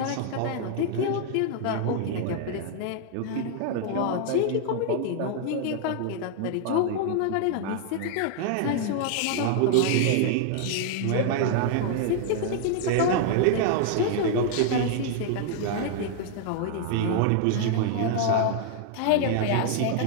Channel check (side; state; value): both; different; correlation 0.00